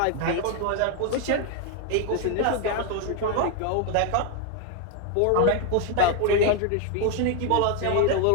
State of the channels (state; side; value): different; both; correlation 0.01